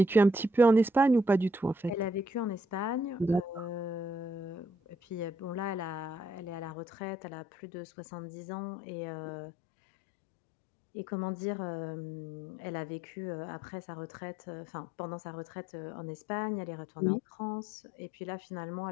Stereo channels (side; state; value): right; drops out; at 6.7 s